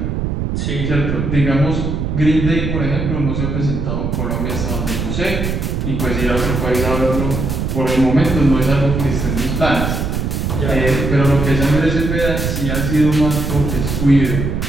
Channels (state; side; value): noise; right; rumble, 2 dB below the sound